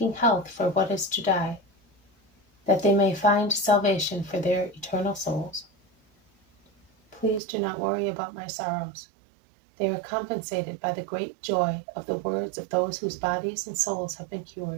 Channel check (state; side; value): drops out; left; at 7.4 s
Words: health for what is to die, that they may find salvation for their eternal souls. Please do not worry about my sorrows. They are compensated by the great joy of the words of those whose bodies and souls have been